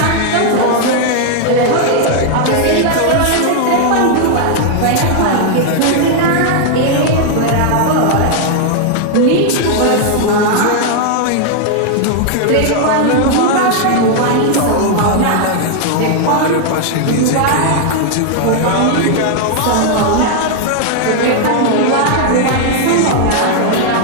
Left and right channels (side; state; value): both; different; correlation 0.00